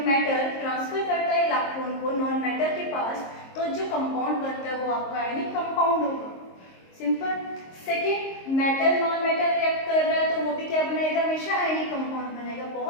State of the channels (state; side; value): late; right; 22 ms